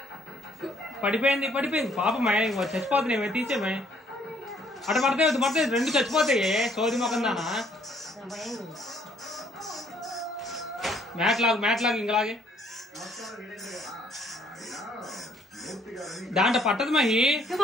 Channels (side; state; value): both; normal; correlation 0.64